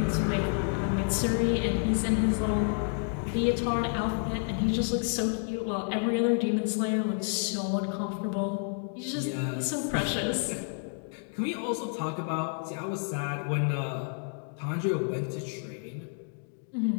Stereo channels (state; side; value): silent; right; 56 dB below the other